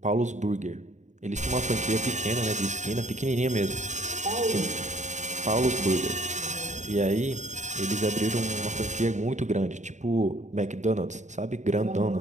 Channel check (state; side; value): late; left; 0.34 ms